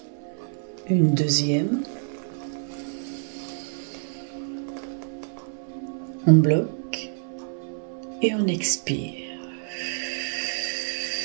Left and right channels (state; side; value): silent; left; 60 dB below the other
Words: Une deuxième. On bloque et on expire.